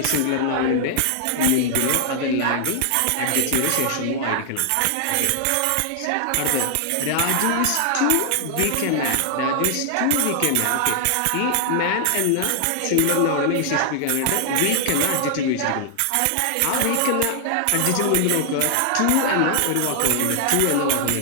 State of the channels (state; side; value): different; both; correlation 0.00